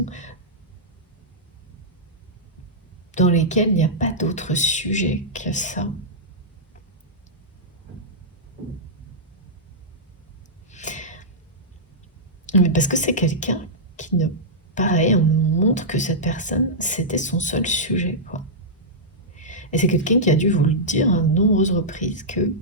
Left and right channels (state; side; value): normal; both; correlation -0.12